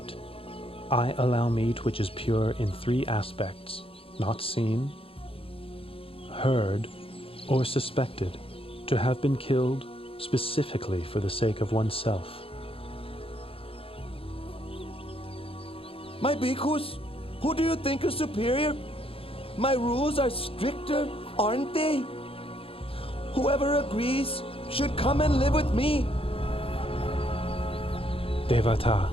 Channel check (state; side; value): late; right; 0.27 ms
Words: I allow meat which is pure in 3 aspects: not seen, heard, or suspected to have been killed specifically for the sake of oneself. My bhikkhus, who do you think is superior? My rules are stricter, aren't they? Whoever agrees should come and live with me. Devata,